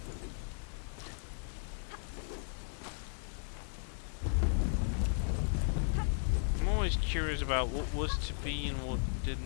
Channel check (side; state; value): right; silent; 54 dB below the other